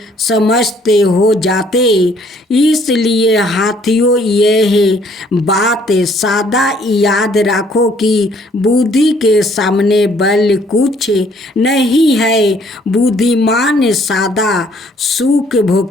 समझते हो जाते। इसलिए हाथियों, यह बात सदा याद रखो कि बुद्धि के सामने बल कुछ नहीं है। बुद्धिमान सदा सुख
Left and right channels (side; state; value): both; normal; correlation 0.62